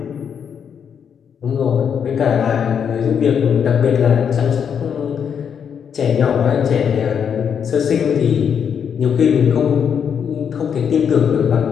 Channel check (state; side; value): quieter; right; 7.6 dB